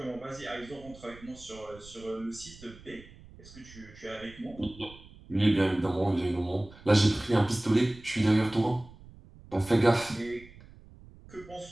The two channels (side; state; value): right; noise; rumble, 21 dB below the sound